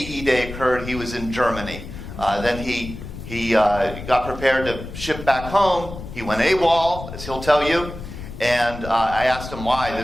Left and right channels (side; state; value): left; noise; rumble, 11 dB below the sound